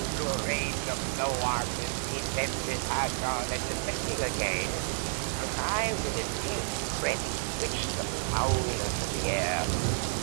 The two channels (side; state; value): left; silent; 57 dB below the other